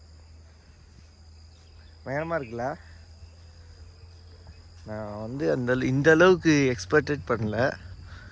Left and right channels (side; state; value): both; identical; correlation 1.00